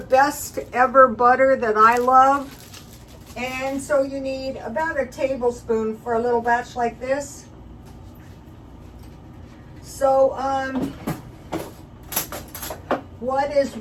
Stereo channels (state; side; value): identical; both; correlation 1.00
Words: ever butter that I love. And so you need about a tablespoon for a little batch like this. So, what is